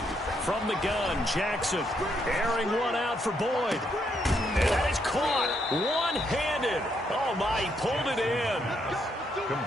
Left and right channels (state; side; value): normal; both; correlation 0.75